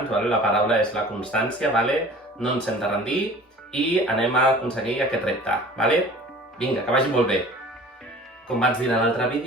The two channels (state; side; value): normal; both; correlation 0.45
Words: vale? La paraula és la constància, vale? No ens hem de rendir i anem a aconseguir aquest repte, vale? Vinga, que vagi molt bé! Com vaig dir en l'altre